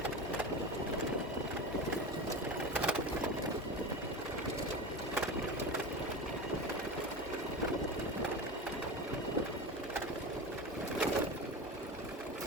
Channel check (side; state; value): both; normal; correlation 0.26